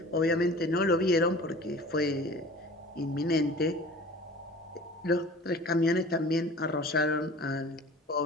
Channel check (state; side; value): normal; both; correlation 0.43